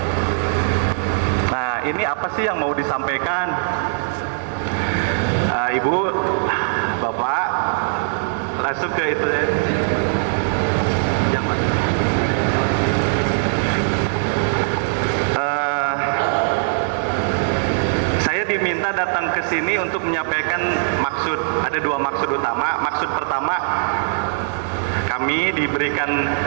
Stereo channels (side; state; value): left; silent; digital silence